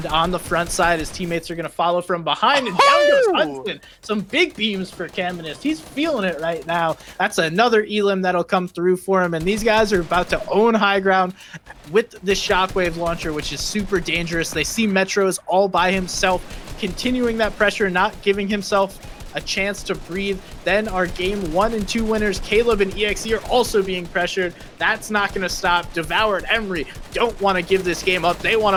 on the front side. His teammates are going to follow from behind, and down goes Hudson. Some big beams for Caminus. He's feeling it right now. That's another elim that'll come through for him, and these guys are about to own high ground with this shockwave launcher, which is super dangerous. They see Metros all by himself, continuing that pressure, not giving himself a chance to breathe. Then our game 1 and 2 winners, Caleb and EXE, are also being pressured. That's not going to stop. Devour and Emery don't want to give this game up. They want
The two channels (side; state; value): both; identical; correlation 1.00